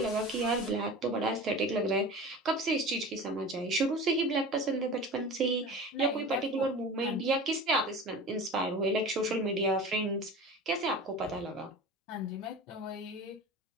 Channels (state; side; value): normal; both; correlation 0.35